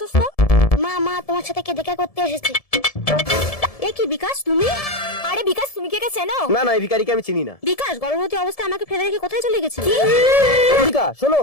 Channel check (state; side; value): late; right; 1.7 ms